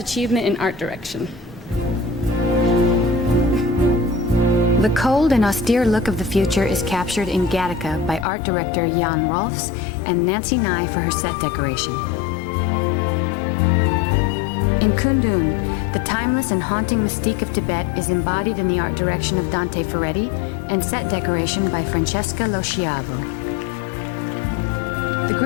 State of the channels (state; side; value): drops out; right; at 8.2 s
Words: in Art Direction. The cold and austere look of the future is captured in Gattaca by art director Jan Rolfs and Nancy Nye for her set decoration. In Kundun, the timeless and haunting mystique of Tibet is embodied in the art direction of Dante Ferretti and set decoration by Francesca Lo Schiavo. The